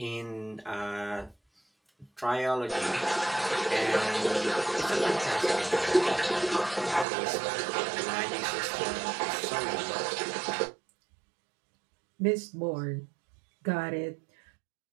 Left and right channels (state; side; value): drops out; left; at 7.1 s